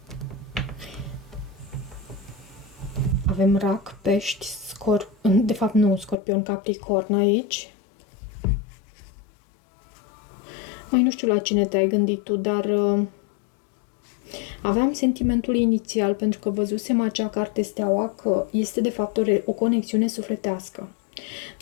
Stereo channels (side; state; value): right; drops out; at 6.2 s